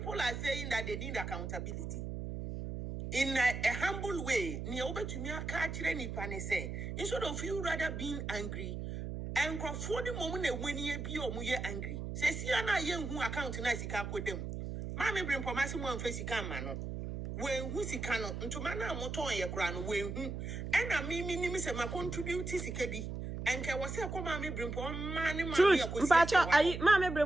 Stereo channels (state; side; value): noise; right; hum, 5 dB below the sound